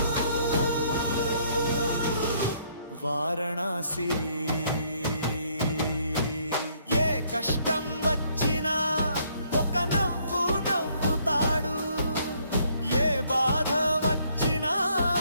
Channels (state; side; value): inverted; both; correlation -0.67